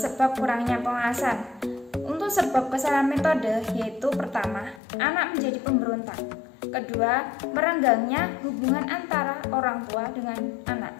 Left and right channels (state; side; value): drops out; right; at 4.8 s